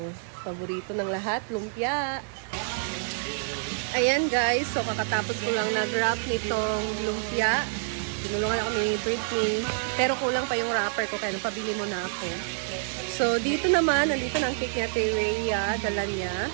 paborito ng lahat, lumpia. Ayan guys, so kakatapos ko lang nag-wrap nitong lumpia. Tinulungan ako ni Britney, pero kulang pa yung wrapper ko, kaya pabili mo na ako. So dito naman, nandito na ang cake niya, Ate Rhea, dala niya.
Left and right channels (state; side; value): silent; left; digital silence